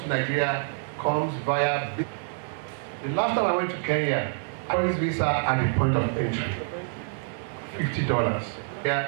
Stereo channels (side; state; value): left; silent; 60 dB below the other